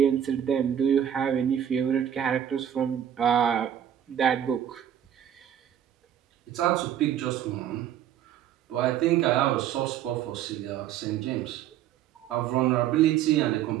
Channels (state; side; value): quieter; left; 10.1 dB